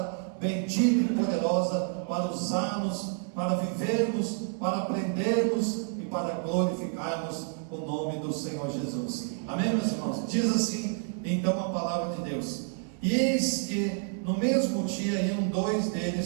bendita e poderosa para usarmos, para vivermos, para aprendermos e para glorificarmos o nome do Senhor Jesus. Amém, meus irmãos? Diz assim então a palavra de Deus: e eis que no mesmo dia iam dois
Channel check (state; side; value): silent; left; 56 dB below the other